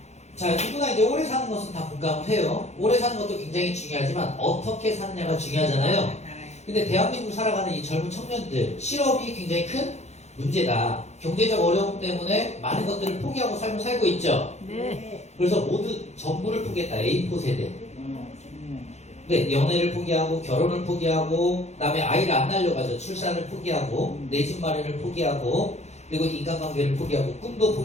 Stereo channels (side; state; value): right; late; 0.32 ms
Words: 자, 누구나 이제 오래 사는 것은 다 공감을 해요. 오래 사는 것도 굉장히 중요하지만 어떻게 사느냐가 중요하잖아요. 근데 대한민국 살아가는 이 젊은 청년들 실업이 굉장히 큰 문제다. 경제적 어려움 때문에 많은 것들을 포기하고 삶을 살고 있죠. 네. 그래서 모두 전부를 포기했다. A4 세대. 네, 연애를 포기하고 결혼을 포기하고 그다음에 아이를 안 낳으려고 하죠. 출산을 포기하고 내 집 마련을 포기하고 그리고 인간관계를 포기하고 꿈도